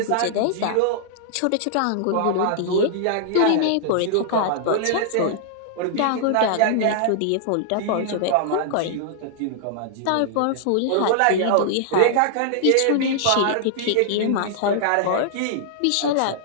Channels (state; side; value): different; both; correlation -0.01